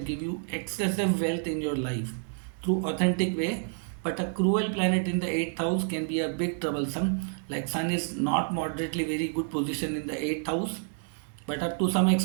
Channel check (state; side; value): silent; left; 59 dB below the other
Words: give you excessive wealth in your life through authentic way. But a cruel planet in the 8th house can be a big troublesome. Like Sun is not moderately very good position in the 8th house, but up to some